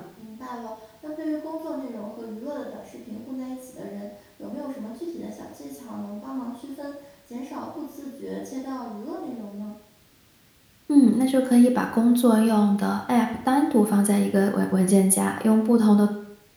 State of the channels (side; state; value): both; identical; correlation 1.00